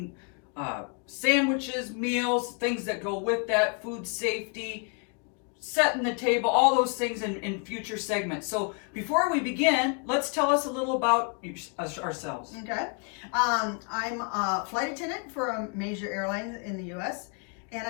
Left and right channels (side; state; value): right; quieter; 37.4 dB